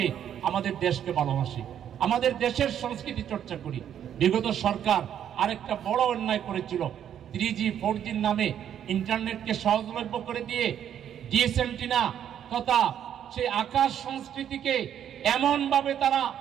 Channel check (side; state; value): left; quieter; 9.7 dB